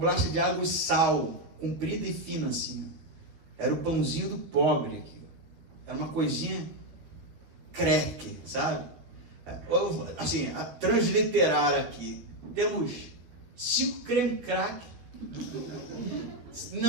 de água e sal, comprida e fina assim. Ó. Era o pãozinho do pobre aqui. Era uma coisinha crack, sabe? Assim, a transliterar aqui. Temos 5 creme crack.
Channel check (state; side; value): late; left; 13 ms